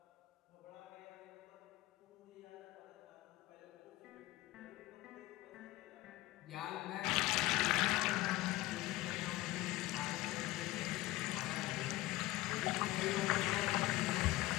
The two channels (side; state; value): right; quieter; 18.0 dB